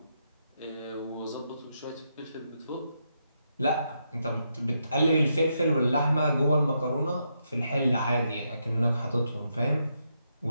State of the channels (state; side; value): inverted; both; correlation -0.81